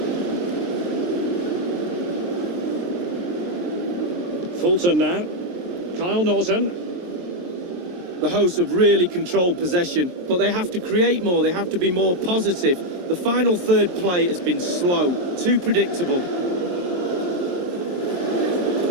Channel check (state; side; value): late; left; 23 ms